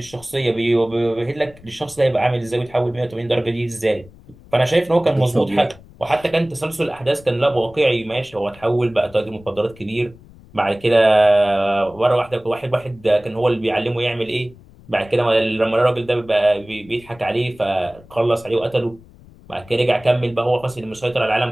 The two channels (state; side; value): noise; left; rumble, 23 dB below the sound